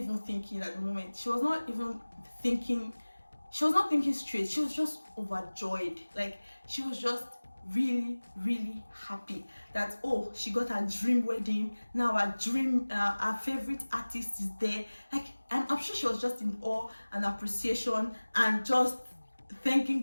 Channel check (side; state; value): both; inverted; correlation -1.00